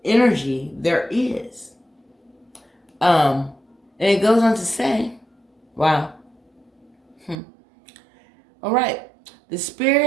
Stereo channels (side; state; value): left; drops out; at 7.4 s